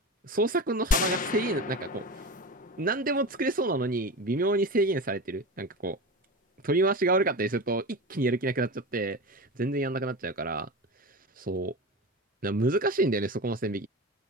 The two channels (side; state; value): both; normal; correlation 0.27